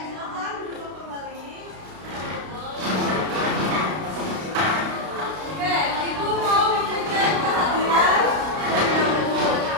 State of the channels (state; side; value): late; left; 32 ms